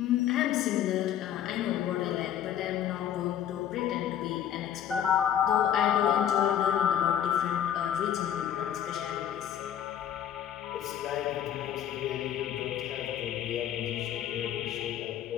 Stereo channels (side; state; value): right; quieter; 10.3 dB